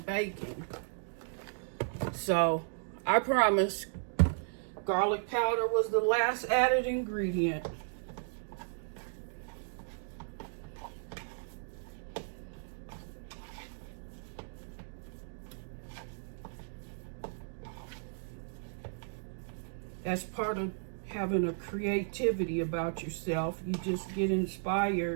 baking. So I promise, garlic powder was the last added ingredient. That's part of having a creativity about yourself. You just get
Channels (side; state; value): left; silent; digital silence